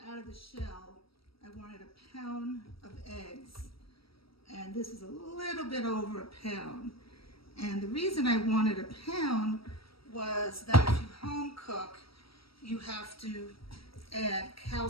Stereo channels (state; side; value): late; right; 0.75 ms